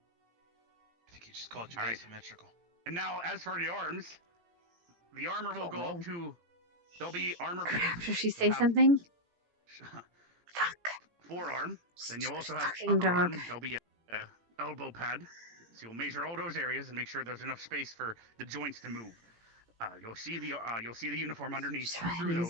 I think he just called you asymmetrical. And now, as for the arms, the armor will go up to. There'll be armor. Should she say something? Forearm. Then you'll also have Fucking upper arm. dog. There'll be a elbow pad. So you'll measure all those areas and make sure there's enough space for the joints to move. You'll see the uniform underneath through those. Use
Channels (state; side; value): late; left; 17 ms